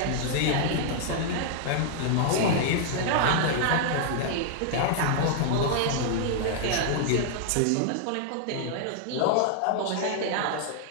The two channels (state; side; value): different; both; correlation -0.01